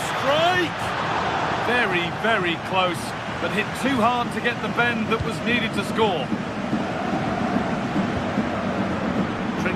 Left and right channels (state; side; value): identical; both; correlation 1.00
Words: strike! Very, very close, but hit too hard to get the bend that was needed to score.